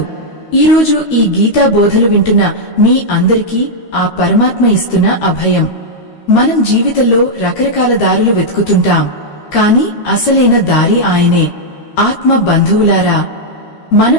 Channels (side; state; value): right; late; 13 ms